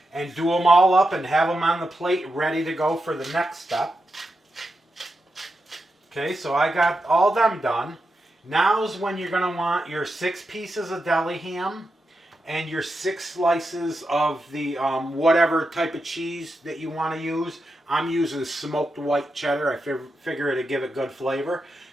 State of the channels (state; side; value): normal; both; correlation 0.87